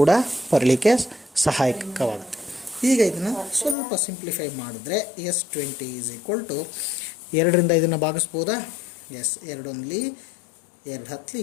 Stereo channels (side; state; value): right; drops out; at 3.8 s